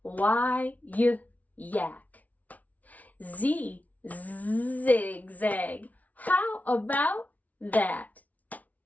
Y, yak. Z, zigzag. How about that?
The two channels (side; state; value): right; late; 0.072 ms